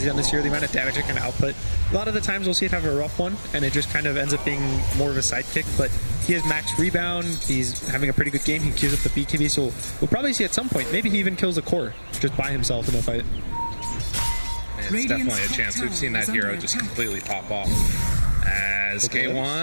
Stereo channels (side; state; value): both; inverted; correlation -1.00